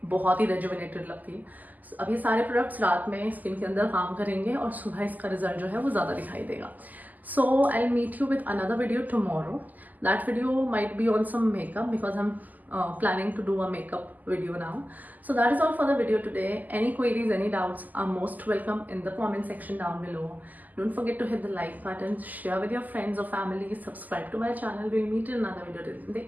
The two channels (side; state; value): left; late; 0.082 ms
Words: बहुत ही रेजुविनेटेड लगती है। अब ये सारे प्रोडक्ट्स रात में स्किन के अंदर काम करेंगे और सुबह इसका रिजल्ट जो है वो ज़्यादा दिखाई देगा। So I'll meet you with another video tomorrow. That video might be on some makeup because I'm planning to do a makeup video now. So that is all for the video today. Any queries, any doubts are most welcome in the comment section down below. Don't forget to hit the like button, share with your friends or family, subscribe to my channel. We'll meet in another video. Take